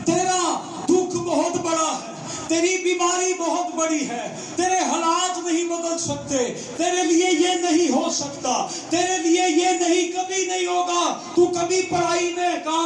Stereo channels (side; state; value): both; identical; correlation 1.00